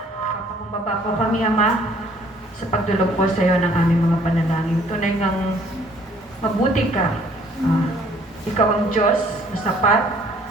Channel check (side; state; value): both; normal; correlation 0.59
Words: Papakumbaba po kami, Ama, sa pagdulog po sa iyo ng aming mga panalangin. Tunay ngang mabuti ka. Ikaw ang Diyos na sapat.